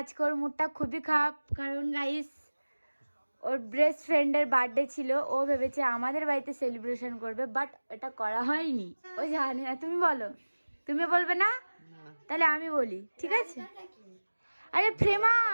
ওর মুডটা খুবই খারাপ। কারণ গাইস, ওর বেস্ট ফ্রেন্ডের বার্থডে ছিল, ও ভেবেছে আমাদের বাড়িতে সেলিব্রেশন করবে, বাট এটা করা হয়নি। ও জানে না। তুমি বলো। তুমি বলবে না? তাহলে আমি বলি, ঠিক আছে? আরে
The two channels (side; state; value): both; inverted; correlation -1.00